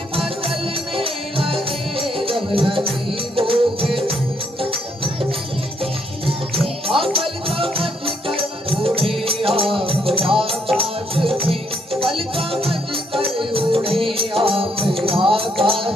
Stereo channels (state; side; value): normal; both; correlation 0.72